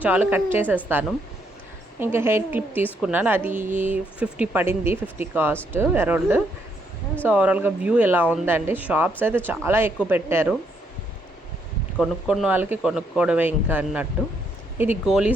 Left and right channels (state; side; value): normal; both; correlation 0.74